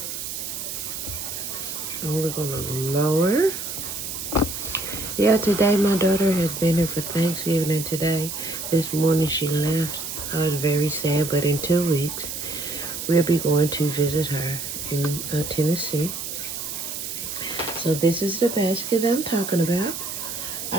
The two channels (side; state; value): right; noise; hiss, 6 dB below the sound